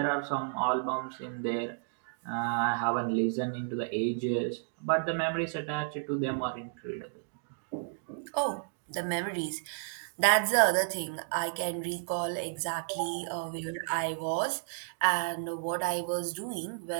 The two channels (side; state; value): left; silent; digital silence